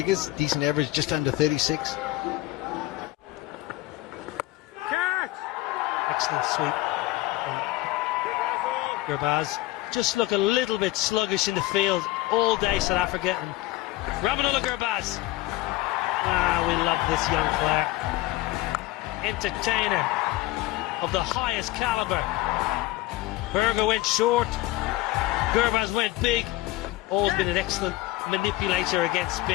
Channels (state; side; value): quieter; right; 17.5 dB